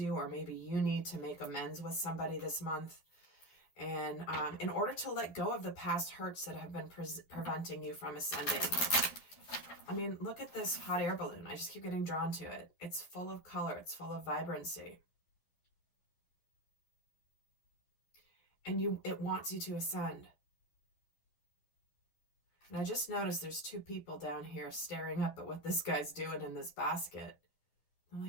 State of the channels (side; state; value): right; late; 11 ms